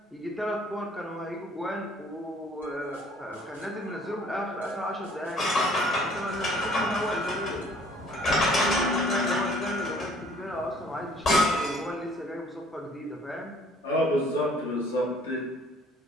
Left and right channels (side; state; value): both; normal; correlation 0.57